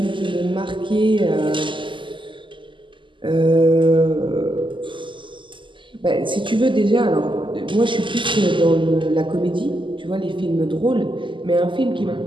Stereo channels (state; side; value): late; left; 0.24 ms